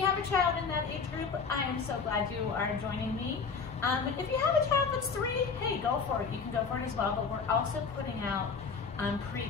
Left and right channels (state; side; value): quieter; right; 5.3 dB